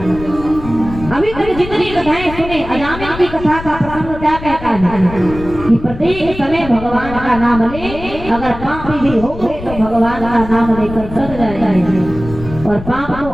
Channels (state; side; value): noise; left; rumble, 11 dB below the sound